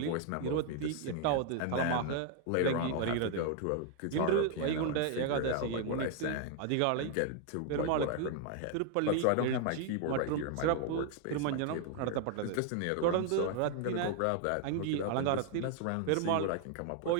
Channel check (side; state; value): both; different; correlation 0.00